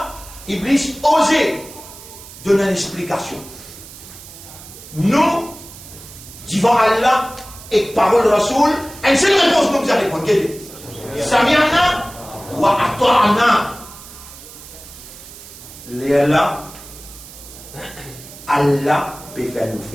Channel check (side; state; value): right; noise; hiss, 17 dB below the sound